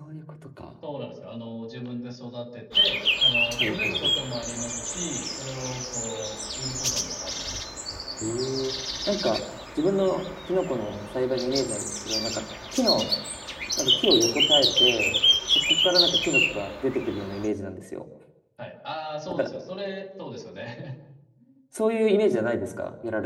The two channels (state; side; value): identical; both; correlation 1.00